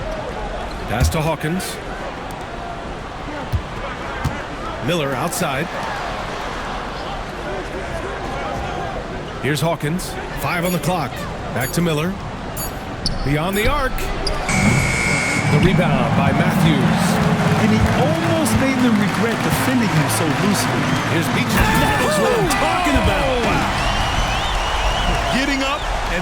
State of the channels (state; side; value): identical; both; correlation 1.00